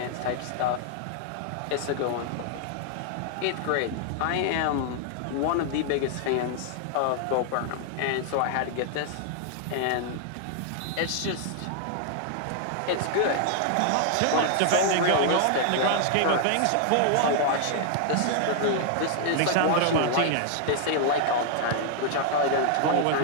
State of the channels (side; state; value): both; different; correlation 0.00